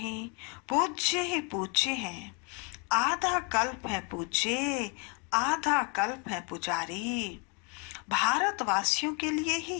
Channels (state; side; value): quieter; right; 34.2 dB